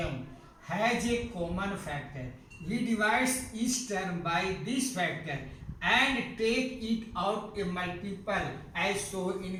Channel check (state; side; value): identical; both; correlation 1.00